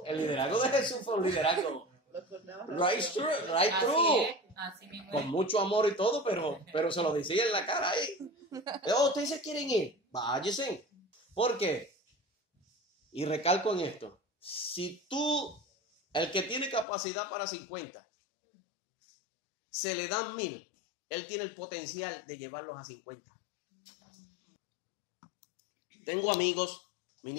el liderazgo de Jesús fue un liderazgo right through. Así mismo. Con mucho amor y todo, pero se lo decía en la cara ahí. Ustedes se quieren ir, váyase. ¿Por qué? Y recalco en esto. Si tú, el que tiene capacidad para 50, se le dan 1000, él tiene el potencial de llevarlos a 50. Tengo amigos,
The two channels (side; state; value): right; drops out; at 16.9 s